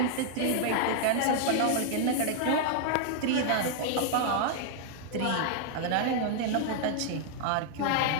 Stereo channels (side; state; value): both; different; correlation 0.00